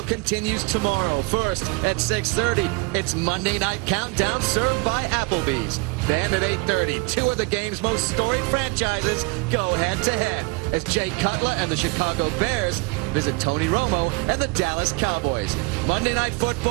continues tomorrow. First, at 6:30, it's Monday Night Countdown served by Applebee's. Then at 8:30, 2 of the game's most storied franchises go head-to-head as Jay Cutler and the Chicago Bears visit Tony Romo and the Dallas Cowboys. Monday Night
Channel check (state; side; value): quieter; left; 25.6 dB